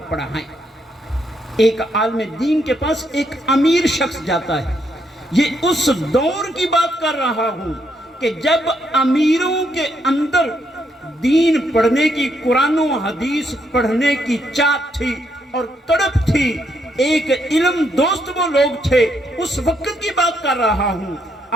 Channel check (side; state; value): both; normal; correlation 0.75